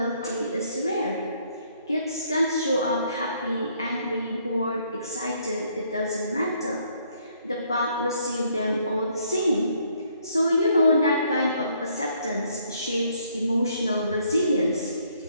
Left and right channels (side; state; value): both; inverted; correlation -0.67